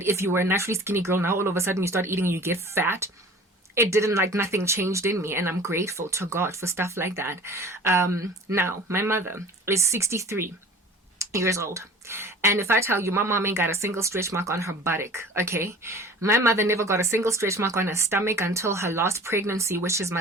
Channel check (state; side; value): normal; both; correlation 0.43